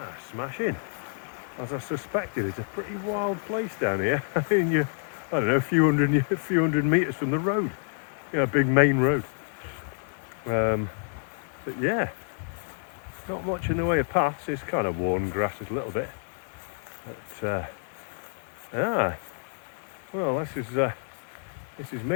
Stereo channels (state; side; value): silent; right; 59 dB below the other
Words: Smashing. As I suspected, it's a pretty wild place down here. I mean, I don't know, a few hundred metres from the road. A big main road. But yeah, not much in the way of paths. It's kind of worn grasses a little bit. But well, this is